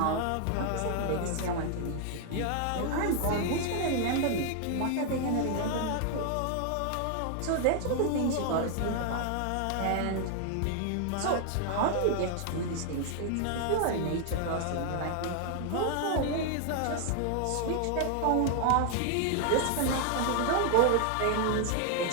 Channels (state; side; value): different; both; correlation 0.00